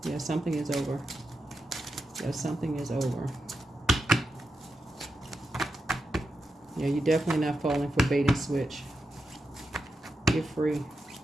Yeah, something is over. Yeah, something is over. Yeah, you're definitely not falling for bait and switch. You're free.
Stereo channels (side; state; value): both; normal; correlation 0.88